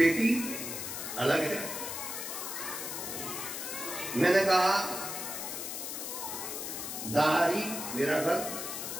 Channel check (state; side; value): noise; left; hiss, 5 dB below the sound